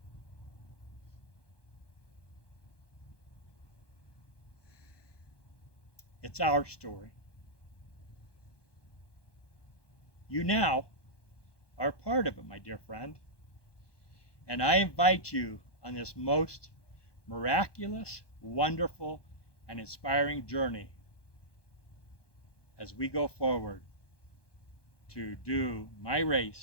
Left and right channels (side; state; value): right; late; 1.2 ms